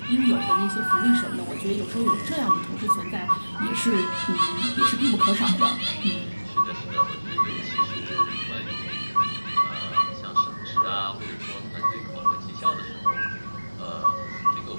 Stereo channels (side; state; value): both; inverted; correlation -1.00